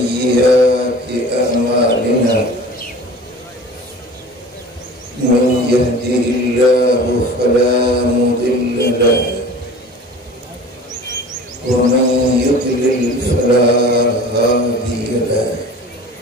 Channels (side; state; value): both; normal; correlation 0.41